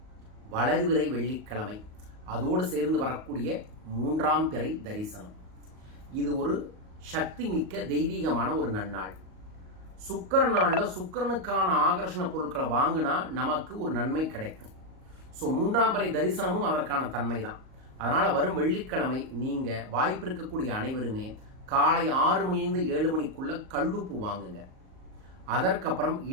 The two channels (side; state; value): left; late; 38 ms